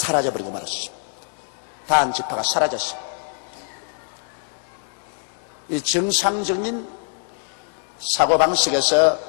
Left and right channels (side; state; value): right; silent; digital silence